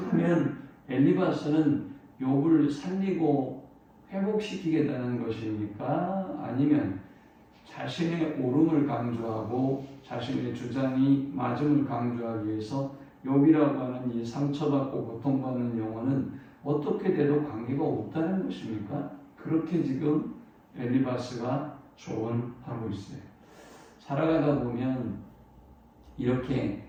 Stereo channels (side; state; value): both; identical; correlation 1.00